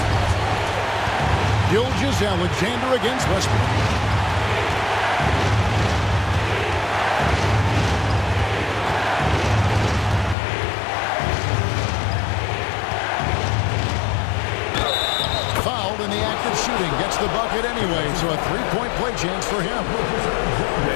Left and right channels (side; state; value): right; drops out; at 10.4 s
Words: Gilgeous-Alexander against Westbrook. Fouled in the act of shooting. Gets the bucket anyway, so a three-point play chance for him.